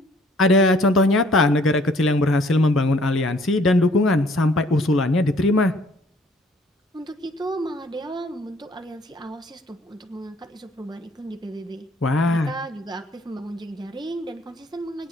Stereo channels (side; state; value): both; normal; correlation 0.59